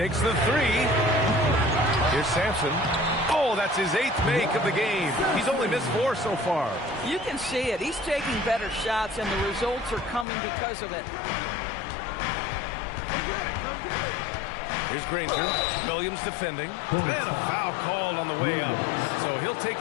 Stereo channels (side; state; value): right; drops out; at 10.2 s